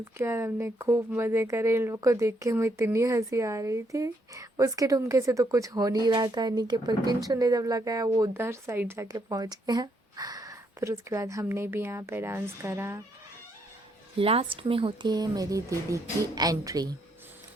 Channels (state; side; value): normal; both; correlation 0.74